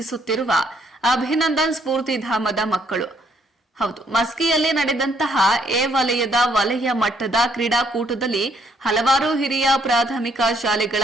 ಅಭಿನಂದನ್ ಸ್ಫೂರ್ತಿಧಾಮದ ಮಕ್ಕಳು. ಹೌದು, ಮಸ್ಕಿಯಲ್ಲಿ ನಡೆದಂತಹ ಎ ವಲಯದ ವಲಯ ಮಟ್ಟದ ಕ್ರೀಡಾಕೂಟದಲ್ಲಿ ಹಲವಾರು ಹಿರಿಯ ಪ್ರಾಥಮಿಕ ಶಾಲೆಗಳ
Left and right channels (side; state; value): both; normal; correlation 0.69